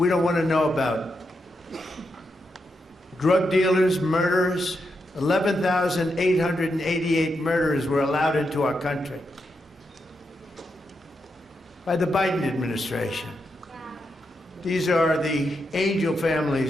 don't want to know about. Drug dealers, murderers, 11,888 murderers were allowed into our country by the Biden administration. These are the angel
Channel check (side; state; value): both; normal; correlation 0.84